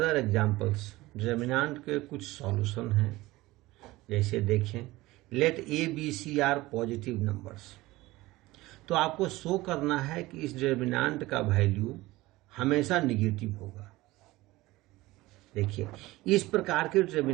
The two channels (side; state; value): left; quieter; 19.1 dB